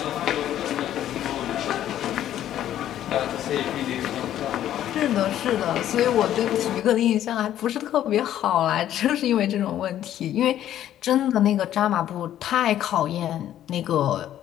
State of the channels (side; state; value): right; quieter; 11.7 dB